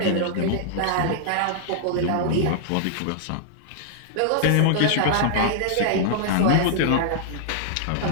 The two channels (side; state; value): both; different; correlation -0.01